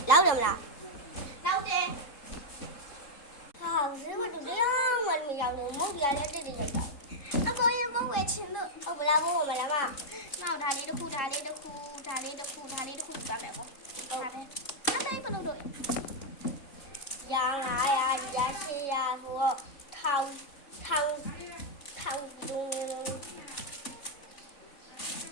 လောက်တယ်မလား နောက်တယ် ဟာဈေးမတူတရားမှမရောက်တော့မဟုတ်ပြလည်းတိတ်တိတ်လိုက်တာ အကိုရဲ့မဝယ်ချင်လို့ ဟုတ်မလားဘိုးမလားမ နောက်ဒါလေးတစ်ခုဒါလေးတစ်ခုဒါလေးတစ်ခုဒါလေးတစ်ခုယူပါမယ်ကိုဒါပဲအတိုင်းဘယ်လိုလုပ် ရ900ရ800ဆိုတော့ထောင်ဒူး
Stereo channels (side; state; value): right; late; 3.7 ms